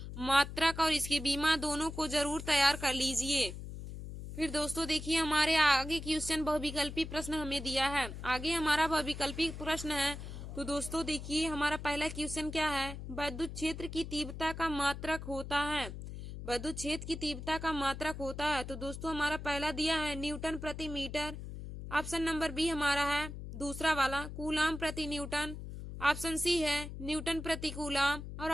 मात्रक और इसके बीमा दोनों को जरूर तैयार कर लीजिए। फिर दोस्तों देखिए, हमारे आगे क्वेश्चन बहुविकल्पी प्रश्न हमें दिया है। आगे हमारा बहुविकल्पी प्रश्न है। तो दोस्तों देखिए, हमारा पहला क्वेश्चन क्या है, विद्युत क्षेत्र की तीव्रता का मात्रक होता है। विद्युत क्षेत्र की तीव्रता का मात्रक होता है। तो दोस्तों, हमारा पहला दिया है न्यूटन प्रति मीटर। ऑप्शन नंबर बी हमारा है दूसरा वाला कूलाम प्रति न्यूटन। ऑप्शन सी है न्यूटन प्रति कूलाम और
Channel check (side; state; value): left; noise; hum, 9 dB below the sound